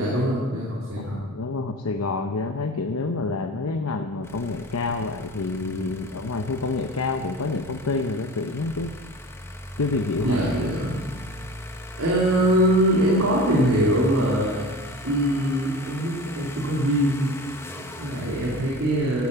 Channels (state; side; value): normal; both; correlation 0.35